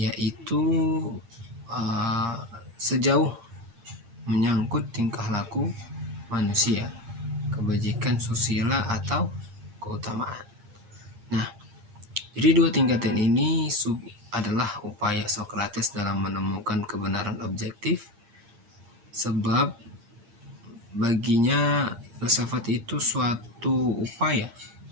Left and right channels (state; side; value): late; left; 8.7 ms